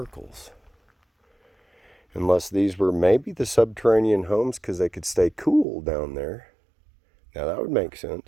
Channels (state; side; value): drops out; left; at 5.7 s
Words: Unless these were maybe the subterranean homes because they could stay cool down there. Now that would make